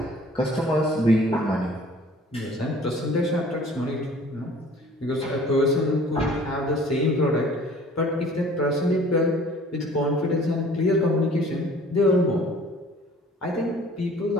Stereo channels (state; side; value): normal; both; correlation 0.50